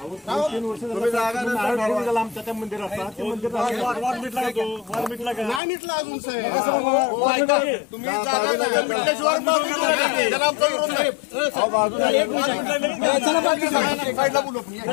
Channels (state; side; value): drops out; right; at 5.6 s